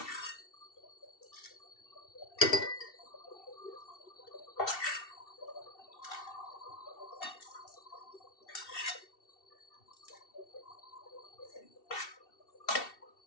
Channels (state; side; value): late; right; 2.7 ms